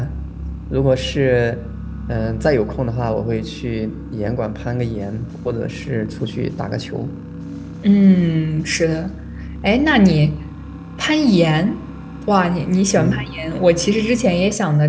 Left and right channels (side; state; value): both; identical; correlation 1.00